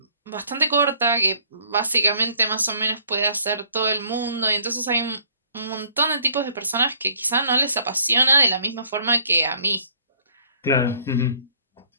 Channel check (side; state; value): both; inverted; correlation -0.60